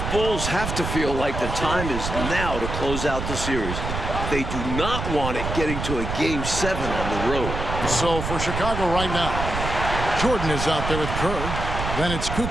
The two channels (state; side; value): noise; right; rumble, 4 dB below the sound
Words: Bulls have to feel like the time is now to close out the series. They do not want it getting to a Game 7 on the road. So for Chicago right now, Jordan is out there with Kerr. Then it's